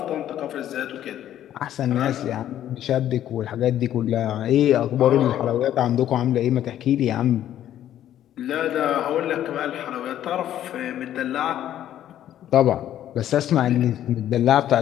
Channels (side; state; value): right; quieter; 11.6 dB